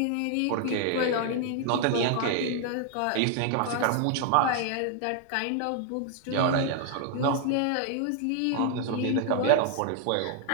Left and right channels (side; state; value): both; different; correlation 0.00